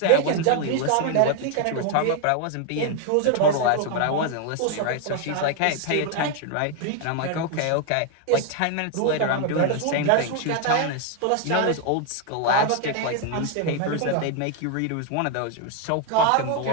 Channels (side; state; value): both; different; correlation 0.01